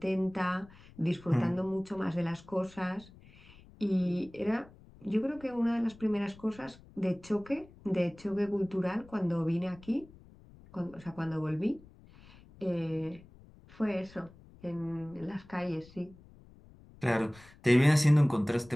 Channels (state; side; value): noise; left; rumble, 23 dB below the sound